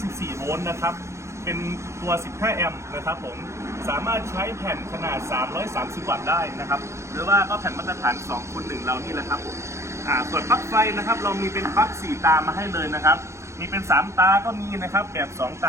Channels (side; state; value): left; late; 0.14 ms